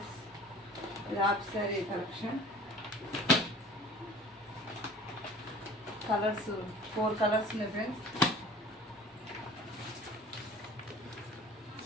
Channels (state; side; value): normal; both; correlation 0.45